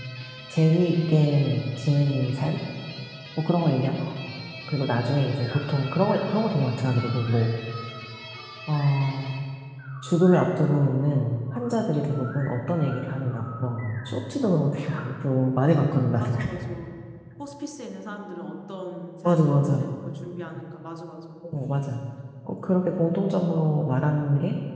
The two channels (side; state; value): both; identical; correlation 1.00